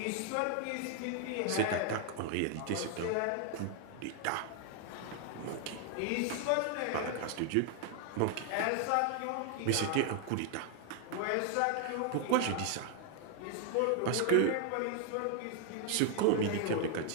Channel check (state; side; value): different; both; correlation 0.00